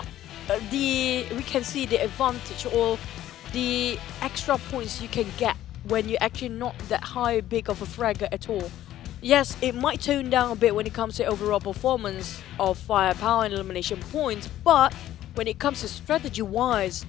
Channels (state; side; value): quieter; right; 13.1 dB